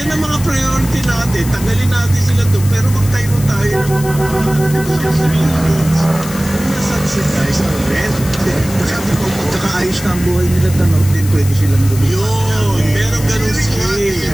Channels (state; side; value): noise; left; hiss, 13 dB below the sound